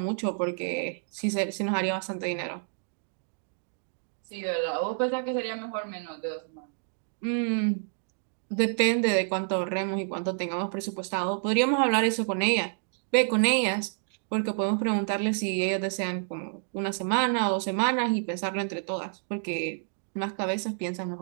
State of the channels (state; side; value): silent; left; digital silence